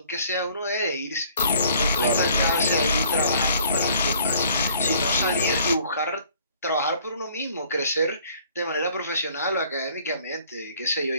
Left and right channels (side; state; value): both; inverted; correlation -0.58